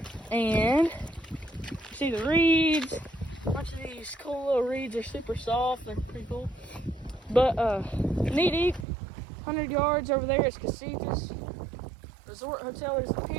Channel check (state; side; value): drops out; left; at 8.8 s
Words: and see the reeds. A bunch of these cool little reeds are super soft. They're pretty cool. But knee deep, 100 yards over there is Casitas. Resort Hotel is up